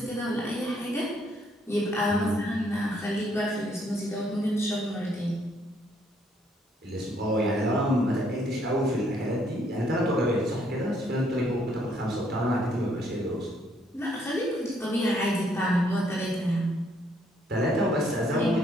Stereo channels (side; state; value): both; normal; correlation 0.69